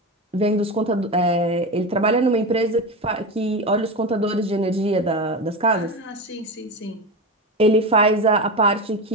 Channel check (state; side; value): normal; both; correlation 0.20